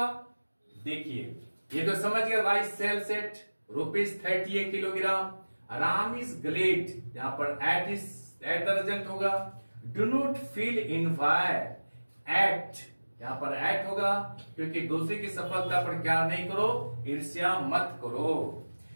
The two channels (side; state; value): both; inverted; correlation -1.00